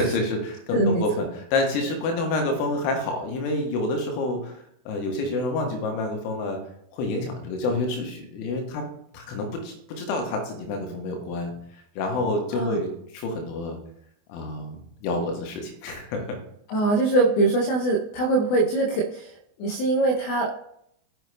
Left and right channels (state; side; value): late; right; 24 ms